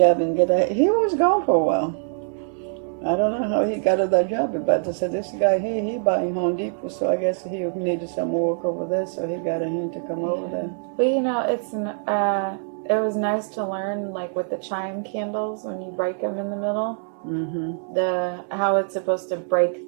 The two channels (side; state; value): left; silent; digital silence